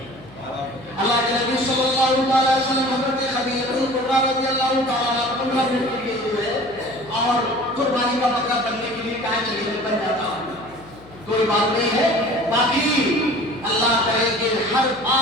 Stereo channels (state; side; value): noise; left; hum, 22 dB below the sound